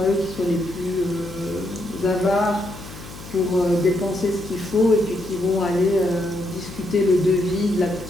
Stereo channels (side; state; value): left; noise; hum, 15 dB below the sound